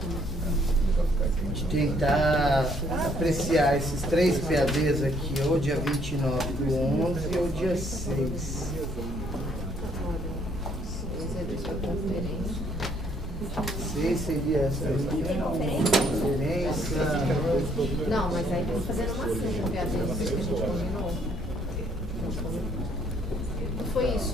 tentar apreciar esses 3 PADs aqui, ou dia 29 do 11 ou dia 6. Seria essa conferência. Não, mas aí tem que fazer uma cena, que a gente combinou. Não foi isso?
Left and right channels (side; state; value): both; normal; correlation 0.66